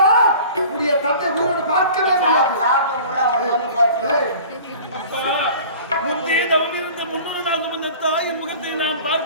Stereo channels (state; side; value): inverted; both; correlation -0.43